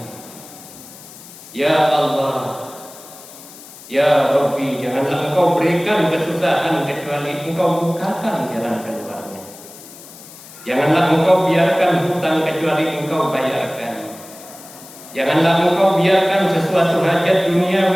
Janganlah engkau berikan kesusahan kecuali engkau bukakan jalan keluarnya. Janganlah engkau biarkan hutang kecuali engkau bayarkan. Janganlah engkau biarkan sesuatu hajat duniawi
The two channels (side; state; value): left; noise; hiss, 18 dB below the sound